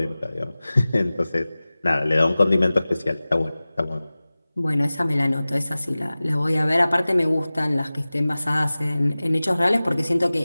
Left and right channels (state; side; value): inverted; both; correlation -0.98